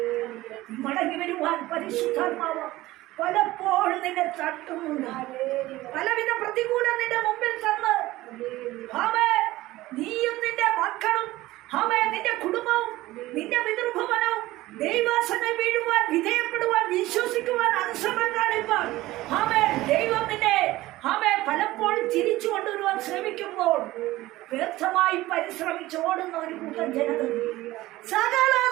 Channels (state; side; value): quieter; left; 17.5 dB